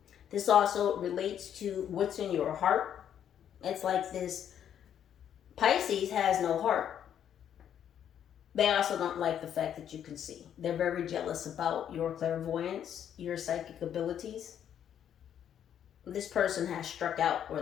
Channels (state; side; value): quieter; right; 9.5 dB